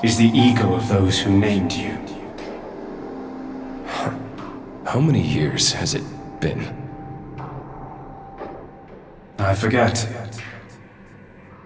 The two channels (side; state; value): both; identical; correlation 1.00